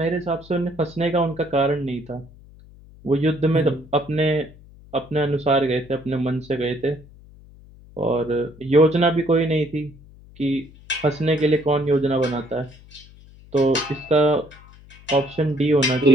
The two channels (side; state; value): left; noise; hum, 23 dB below the sound